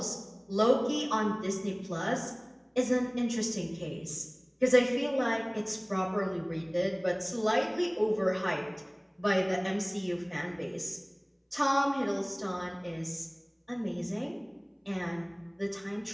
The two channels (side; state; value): both; identical; correlation 1.00